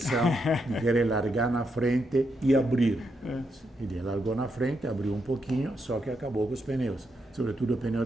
de querer largar na frente e abrir. Ele largou na frente, abriu um pouquinho, só que acabou com os pneus, sobretudo o pneu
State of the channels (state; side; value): normal; both; correlation 0.81